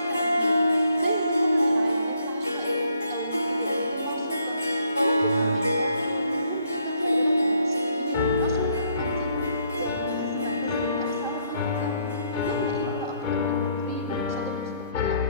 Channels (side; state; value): both; inverted; correlation -0.69